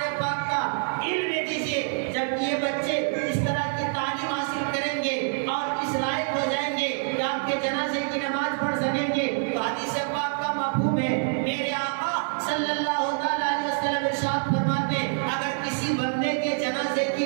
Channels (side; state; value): left; silent; 60 dB below the other